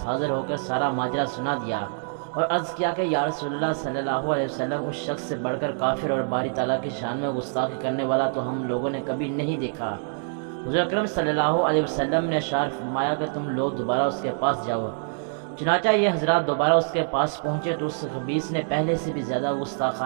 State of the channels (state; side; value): silent; left; digital silence